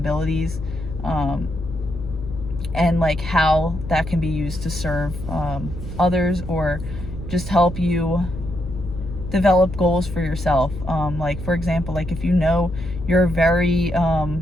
and like how that can be used to serve others, or just help you develop goals for yourself. Like, for example, like if you know you're a very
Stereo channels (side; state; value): left; noise; hum, 9 dB below the sound